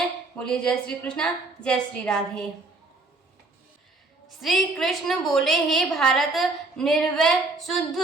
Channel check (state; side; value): quieter; left; 3.3 dB